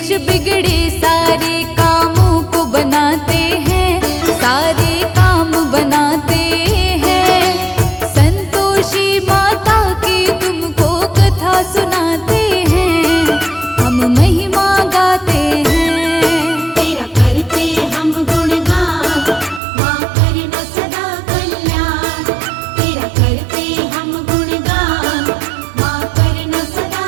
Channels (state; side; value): drops out; left; at 19.6 s